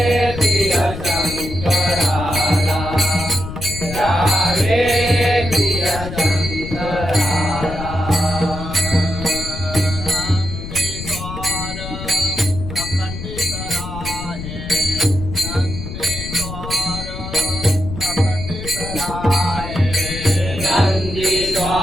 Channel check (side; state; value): left; noise; rumble, 8 dB below the sound